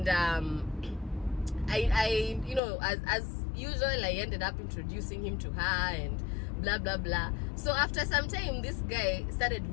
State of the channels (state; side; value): drops out; right; at 2.6 s